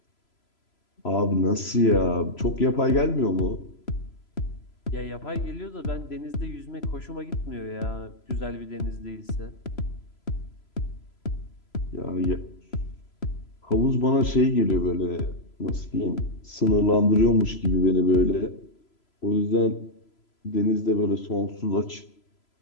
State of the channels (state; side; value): late; right; 3.0 ms